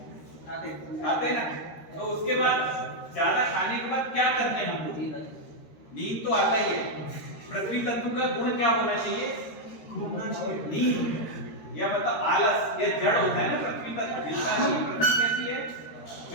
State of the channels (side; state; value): right; late; 13 ms